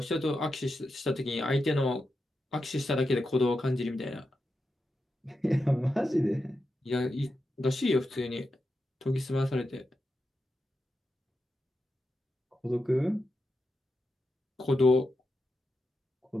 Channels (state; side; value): normal; both; correlation 0.88